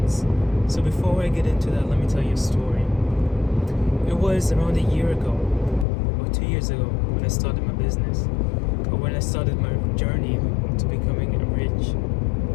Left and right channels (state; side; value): drops out; right; at 5.9 s